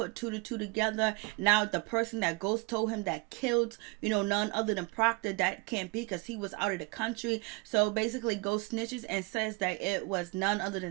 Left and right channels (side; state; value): left; quieter; 27.0 dB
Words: 2 to 2 together. Now the person that Ghost told him that killed, none other than Proctor, that can't be, because he was out of the country. So basically Ghost snitches and says that it was none other